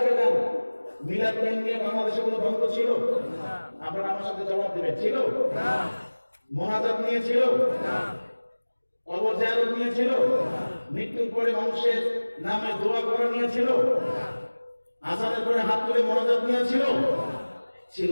আগে যান, মিলাদ নিয়ে বাংলাদেশে কোনো দ্বন্দ্ব ছিল? আপনারা আমার সাথে জবাব দেবেন, ছিল? মোনাজাত নিয়ে ছিল? কবর জিয়ারত নিয়ে ছিল? মৃত্যুর পরে মানুষের নামে দোয়া করা নিয়ে ছিল? আজানের পরে হাত তুলে মোনাজাত নিয়ে ছিল? ছিল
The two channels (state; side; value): inverted; both; correlation -1.00